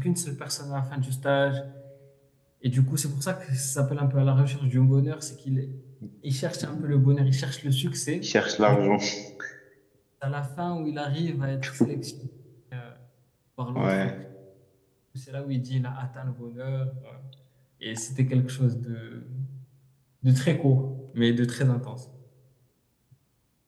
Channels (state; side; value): identical; both; correlation 1.00